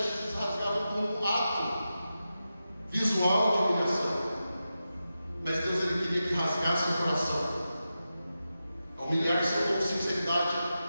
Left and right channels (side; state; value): both; inverted; correlation -0.91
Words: eles rasgavam como um ato visual de humilhação. Mas Deus, ele queria que rasgasse o coração. Humilhar-se com sinceridade,